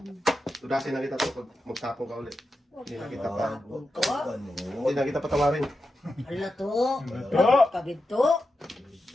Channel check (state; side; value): normal; both; correlation 0.90